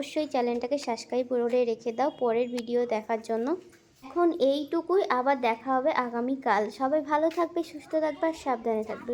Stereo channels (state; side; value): identical; both; correlation 1.00